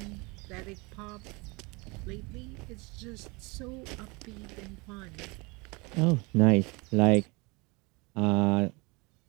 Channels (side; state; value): left; quieter; 27.1 dB